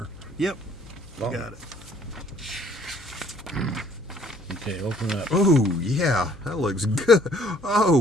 Yep. Oh. Got it. Okay, open up. Oh, yeah. That looks good.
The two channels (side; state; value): left; noise; hum, 23 dB below the sound